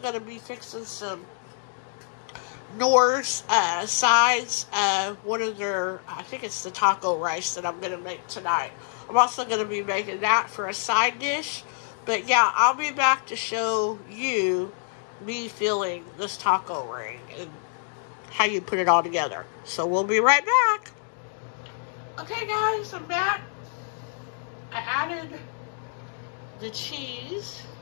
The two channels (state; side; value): silent; right; digital silence